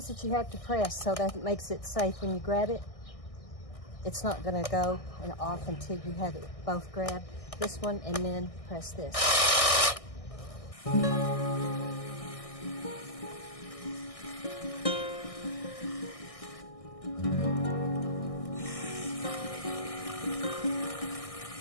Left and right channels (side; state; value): right; late; 1.6 ms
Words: that you have to press so that makes it safe when you grab it. It's not going to go and off until you have it both grabbed. This one and then press this.